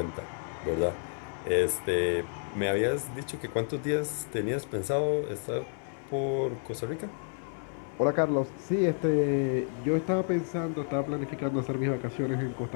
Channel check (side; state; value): right; silent; 58 dB below the other